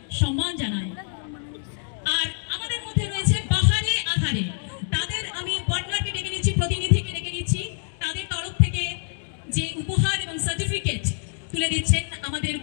সম্মান জানায়। আর আমাদের মধ্যে রয়েছে বাহারে আধারে, তাদের আমি পার্টনারকে ডেকে নিচ্ছি, প্রতিনিধিকে ডেকে নিচ্ছি। তাদের তরফ থেকে যে উপহার এবং সার্টিফিকেট তুলে দিচ্ছেন আমাদের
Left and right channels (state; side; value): silent; right; 61 dB below the other